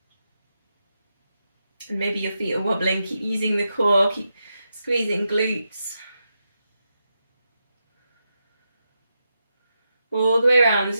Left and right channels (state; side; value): inverted; both; correlation -0.86